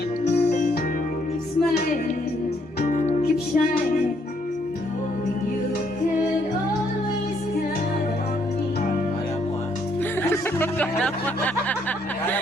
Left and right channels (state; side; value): normal; both; correlation 0.70